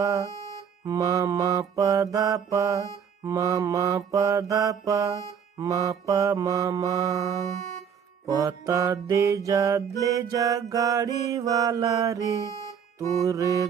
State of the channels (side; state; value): left; quieter; 7.5 dB